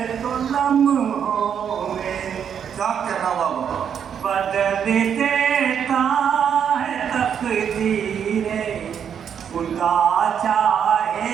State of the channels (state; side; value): quieter; left; 8.1 dB